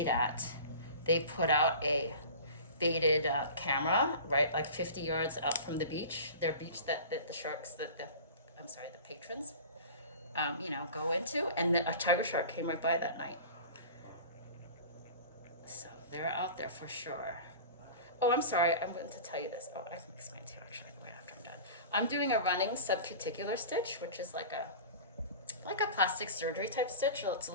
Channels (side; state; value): both; inverted; correlation -0.37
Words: at, they put out a baited camera, right, like 50 yards out from the beach, their beach that the sharks, the patrons, you know, go into, and then a tiger shark came right by that night. So they're out there for sure. Oh, I'm sorry, I'm going to tell you this. Oh, I can explain to you actually right after I'm done. I'm doing a running subcuticular stitch, which is like a plastic surgery type stitch. So it's a